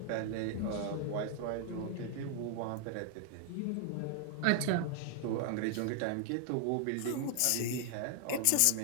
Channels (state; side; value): different; both; correlation 0.00